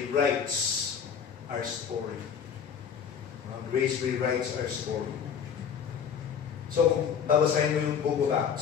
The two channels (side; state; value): right; quieter; 7.4 dB